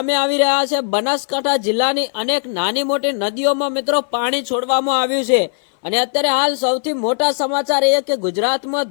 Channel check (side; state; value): right; silent; 60 dB below the other